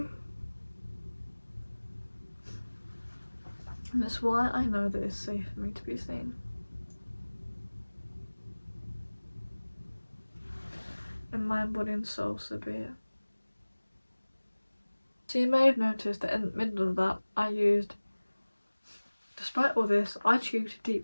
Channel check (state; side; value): inverted; both; correlation -1.00